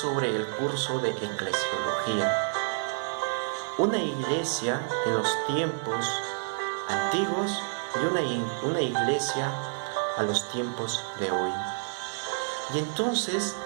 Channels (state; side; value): silent; left; 59 dB below the other